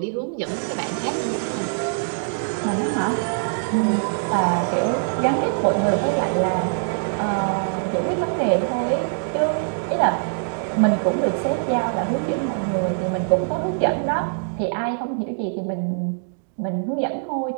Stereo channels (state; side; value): silent; left; digital silence